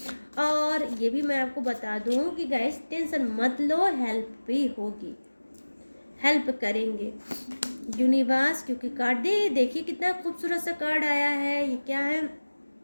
और ये भी मैं आपको बता दूं कि गाइस टेंशन मत लो, हेल्प भी होगी, हेल्प करेंगे यूनिवर्स। क्योंकि कार्ड देखिए कितना खूबसूरत सा कार्ड आया है, ये क्या है,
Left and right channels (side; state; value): both; inverted; correlation -1.00